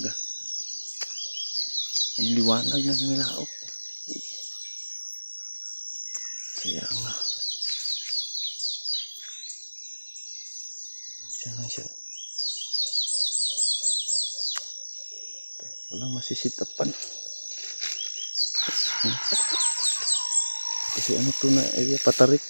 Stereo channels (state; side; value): inverted; both; correlation -1.00